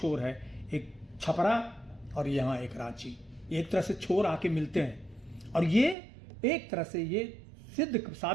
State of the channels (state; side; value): drops out; left; at 6.0 s